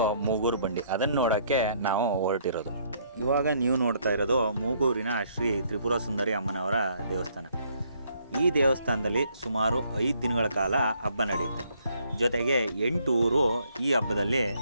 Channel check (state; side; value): inverted; both; correlation -0.67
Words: ಮೂಗೂರು ಬಂಡಿ. ಅದನ್ನು ನೋಡೋಕ್ಕೆ ನಾವು ಹೊರಟಿರೋದು. ಇವಾಗ ನೀವು ನೋಡ್ತಾ ಇರೋದು ಮೂಗೂರಿನ ಶ್ರೀ ತ್ರಿಪುರ ಸುಂದರಿ ಅಮ್ಮನವರ ದೇವಸ್ಥಾನ. ಈ ದೇವಸ್ಥಾನದಲ್ಲಿ ಸುಮಾರು 5 ದಿನಗಳ ಕಾಲ ಹಬ್ಬ ನಡೆಯುತ್ತೆ. ಜೊತೆಗೆ 8 ಊರು ಈ ಹಬ್ಬದಲ್ಲಿ